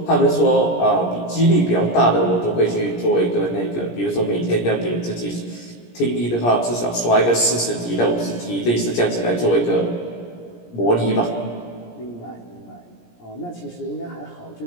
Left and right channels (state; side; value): late; right; 17 ms